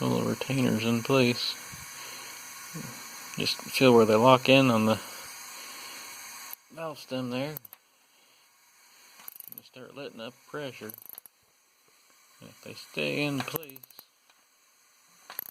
retainers in place. Just feel where they lock in on the valve stem there. You start letting up pressure. And if they stay in place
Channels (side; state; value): both; identical; correlation 1.00